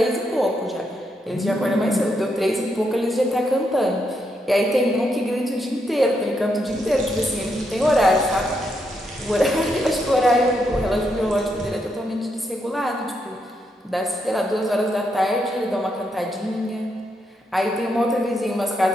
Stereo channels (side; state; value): both; normal; correlation 0.80